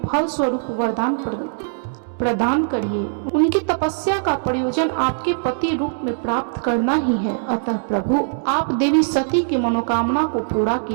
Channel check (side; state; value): left; silent; digital silence